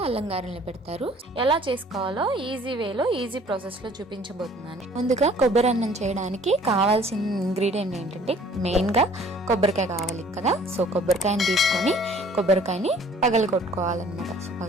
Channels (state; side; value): normal; both; correlation 0.54